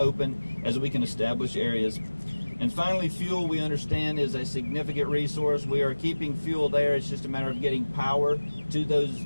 as we can establish areas. And finally, fuel, we understand, is a significant resource. We are keeping fuel there. It's just a matter of getting power to those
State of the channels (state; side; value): inverted; both; correlation -1.00